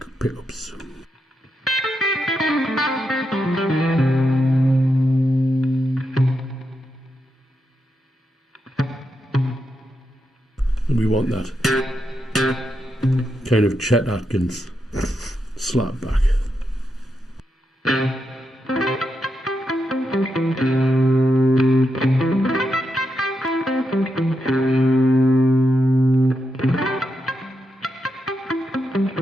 pickups. And we want that kind of Chet Atkins slap back.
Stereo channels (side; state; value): both; normal; correlation 0.84